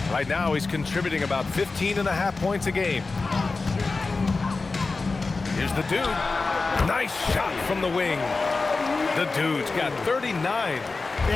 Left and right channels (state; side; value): quieter; right; 3.9 dB